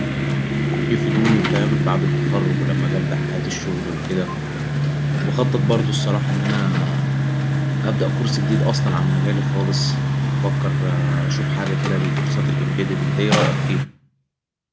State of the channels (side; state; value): both; identical; correlation 1.00